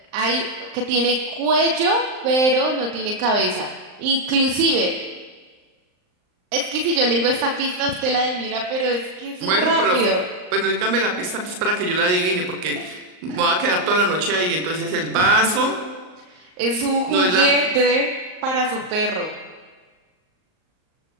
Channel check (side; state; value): left; late; 38 ms